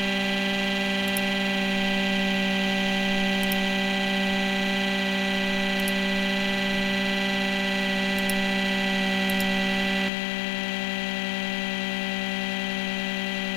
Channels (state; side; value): drops out; right; at 10.1 s